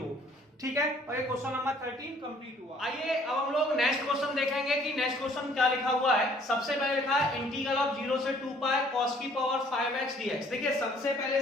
ठीक है, और ये क्वेश्चन नंबर 13 कंप्लीट हुआ। आइए अब हम लोग नेक्स्ट क्वेश्चन देखेंगे कि नेक्स्ट क्वेश्चन क्या लिखा हुआ है। सबसे पहले लिखा है इंटीग्रल ऑफ 0 से 2 पाई cos की पावर 5x dx। देखिए सबसे पहले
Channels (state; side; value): normal; both; correlation 0.59